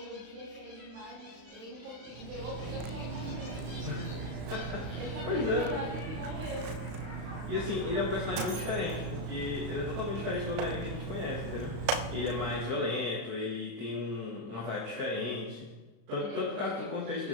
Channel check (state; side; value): late; left; 35 ms